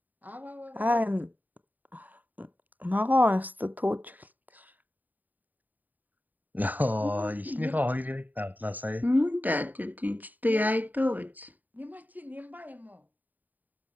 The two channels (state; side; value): late; left; 0.083 ms